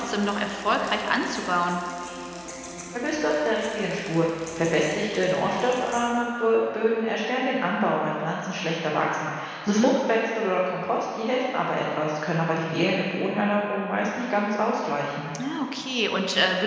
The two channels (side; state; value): both; identical; correlation 1.00